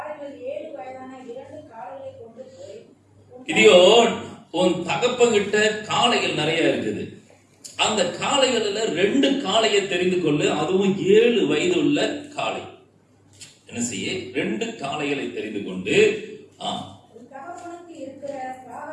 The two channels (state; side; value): identical; both; correlation 1.00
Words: கிதியோன், உன் தகப்பங்கிட்ட காளைகள் நிறைய இருக்குது. அந்த காளைகளில் 2 காளையை தெரிந்து கொள்ளு, அதுவும் 7 வயது உள்ள காளை. என்ன செய்ய? 2 காளைகளை தெரிந்து கொண்டு,